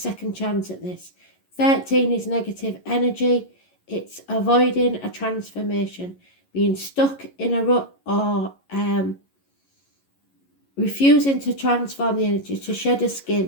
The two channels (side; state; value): right; late; 11 ms